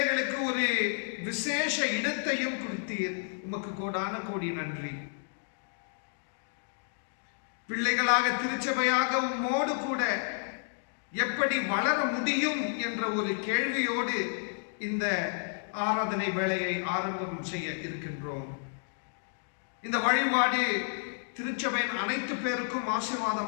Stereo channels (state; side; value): silent; right; digital silence